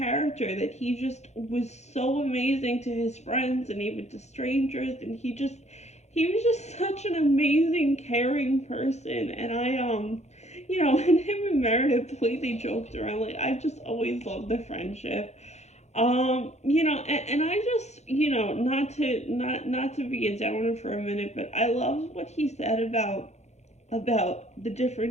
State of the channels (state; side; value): late; right; 0.33 ms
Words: that he just was so amazing to his friends and even to strangers, and he was just such an amazing, caring person. And and him and Meredith, the way they joked around, like, I just always loved the friendship. And I just, not to be a downer for a minute, but I loved what he said about the